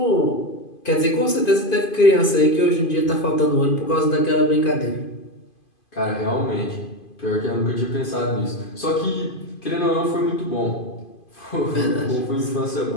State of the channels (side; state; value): right; late; 2.5 ms